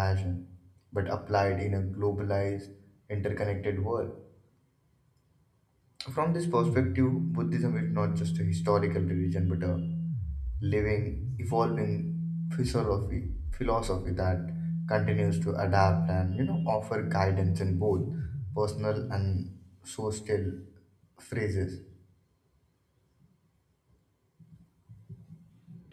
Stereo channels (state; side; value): identical; both; correlation 1.00